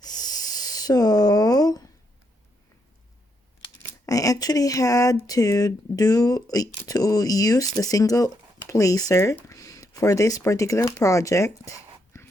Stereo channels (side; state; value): both; normal; correlation 0.78